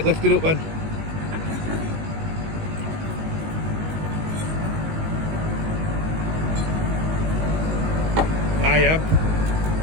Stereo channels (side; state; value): left; late; 19 ms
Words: lifted up then. Hiab,